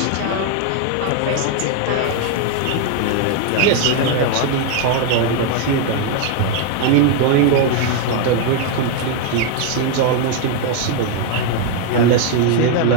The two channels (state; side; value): different; both; correlation 0.01